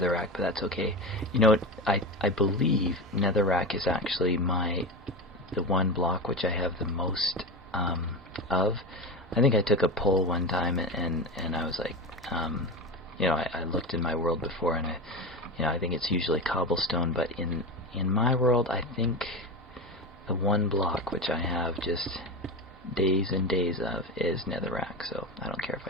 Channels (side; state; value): both; normal; correlation 0.21